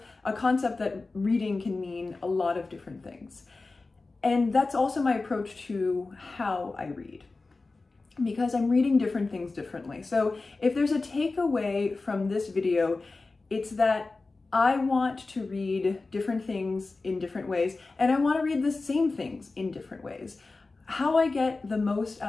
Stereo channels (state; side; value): quieter; right; 3.6 dB